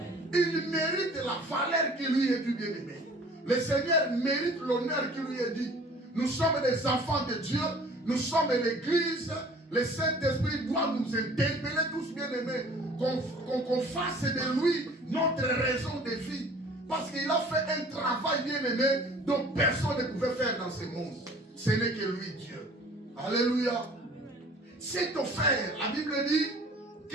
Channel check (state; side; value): normal; both; correlation 0.49